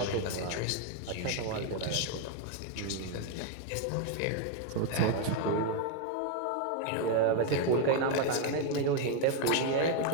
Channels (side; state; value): both; different; correlation 0.00